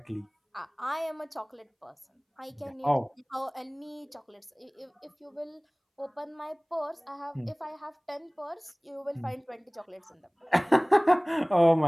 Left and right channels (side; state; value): both; identical; correlation 1.00